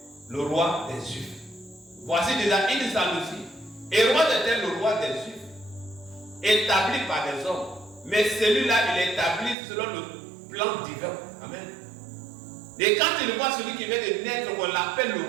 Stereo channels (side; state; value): left; drops out; at 9.6 s